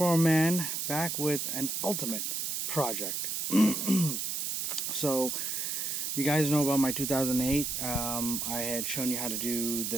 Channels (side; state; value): right; noise; hiss, 1 dB below the sound